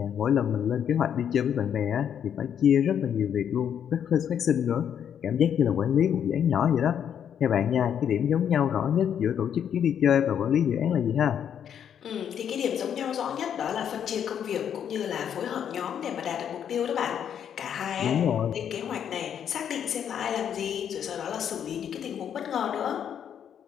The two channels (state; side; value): quieter; right; 8.8 dB